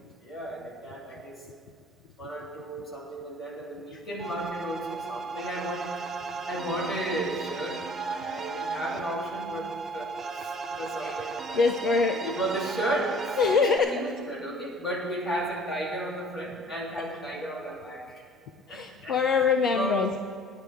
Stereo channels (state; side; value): normal; both; correlation 0.51